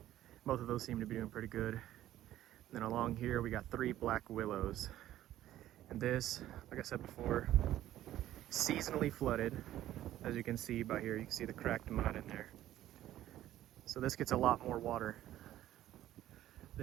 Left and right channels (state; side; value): quieter; left; 13.3 dB